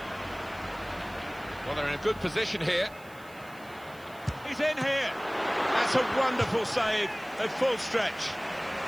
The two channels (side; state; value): right; noise; hiss, 24 dB below the sound